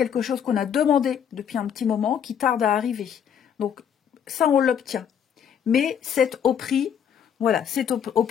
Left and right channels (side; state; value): right; quieter; 8.3 dB